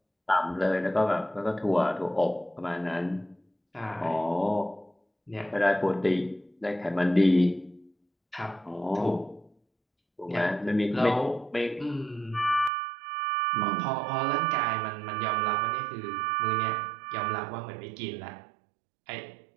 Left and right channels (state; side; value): drops out; left; at 12.7 s